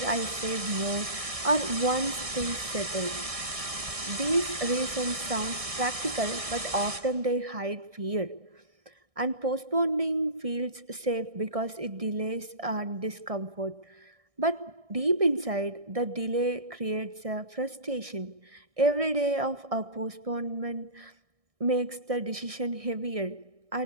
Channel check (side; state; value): left; late; 1.6 ms